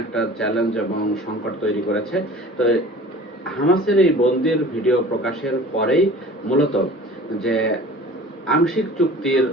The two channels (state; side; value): normal; both; correlation 0.43